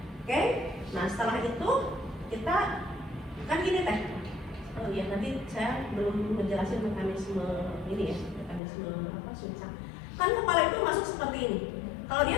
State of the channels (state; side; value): drops out; right; at 8.6 s